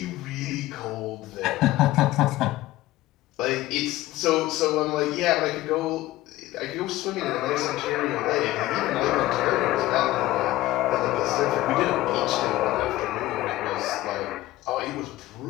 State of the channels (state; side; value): quieter; right; 16.5 dB